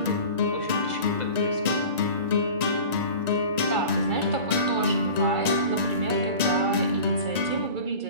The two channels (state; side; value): late; left; 1.9 ms